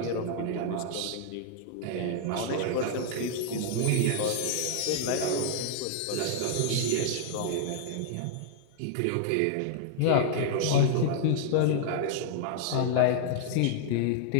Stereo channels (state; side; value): different; both; correlation -0.01